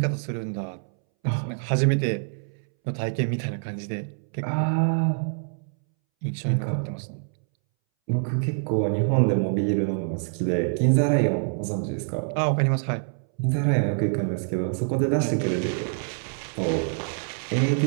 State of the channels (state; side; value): silent; left; 61 dB below the other